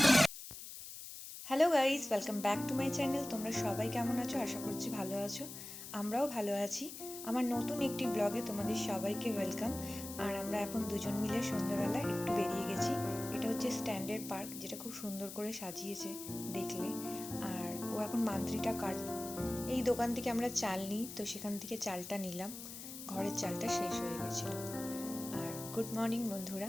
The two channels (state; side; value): noise; left; hiss, 11 dB below the sound